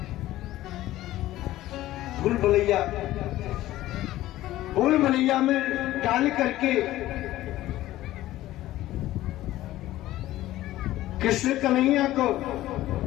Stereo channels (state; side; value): quieter; right; 15.3 dB